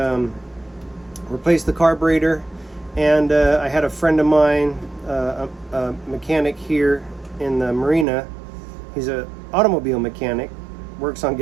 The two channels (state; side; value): drops out; left; at 8.1 s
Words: carburetor, and I had a friend of mine, a mechanic here in the Marina. He's an automobile mechanic, works on